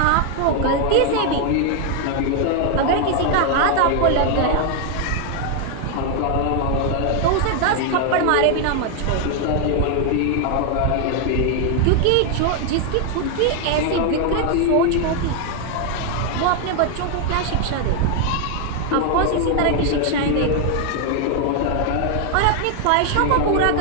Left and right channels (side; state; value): both; different; correlation 0.00